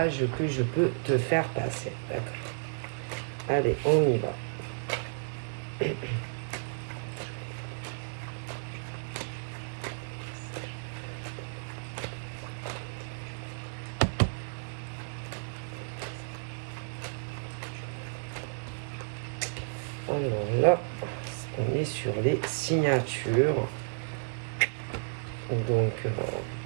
que je peux te faire passer. D'accord. Allez, on y va. Alors là, on est sur les signatures. Donc,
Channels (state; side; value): silent; left; 56 dB below the other